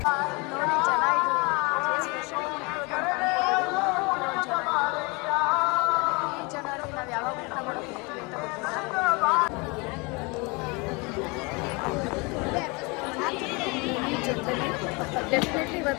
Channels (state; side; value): quieter; right; 28.3 dB